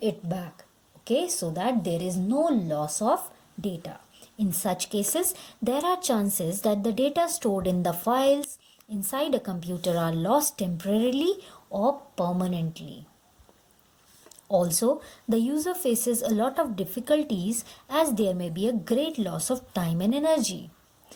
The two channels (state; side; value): identical; both; correlation 1.00